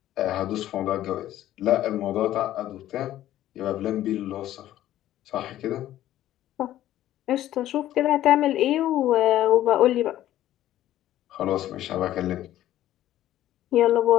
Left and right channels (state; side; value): quieter; right; 13.3 dB